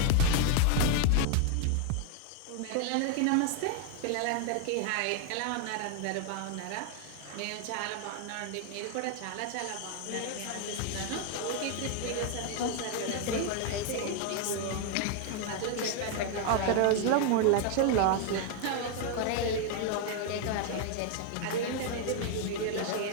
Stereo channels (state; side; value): different; both; correlation 0.00